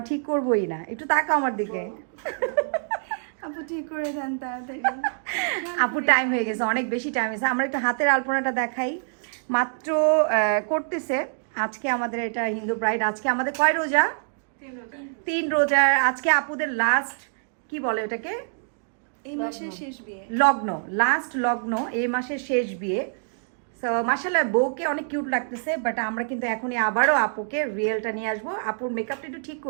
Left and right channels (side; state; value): left; silent; digital silence